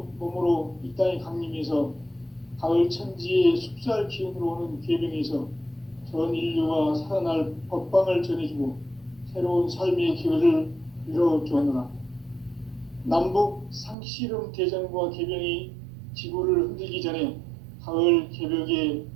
몸으로 이 땅에 강림해서 가을 천지의 숲살 기운으로 오는 계명에서 전 인류가 살아날 법방을 전해주고 새로운 삶의 기회를 이뤄주었노라. 남북 상씨름 대전과 개병이 지구를 흔들기 전에 가을 개벽의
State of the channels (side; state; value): left; drops out; at 14.0 s